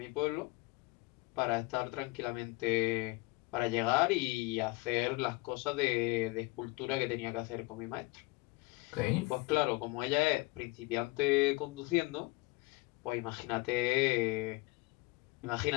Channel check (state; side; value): quieter; right; 23.5 dB